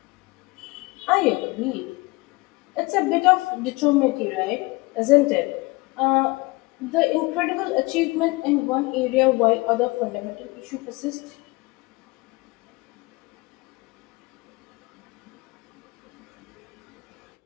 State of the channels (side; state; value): right; quieter; 23.9 dB